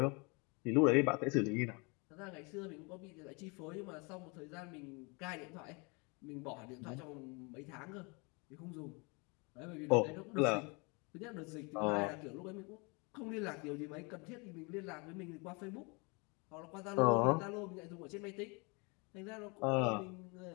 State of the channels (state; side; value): quieter; right; 30.1 dB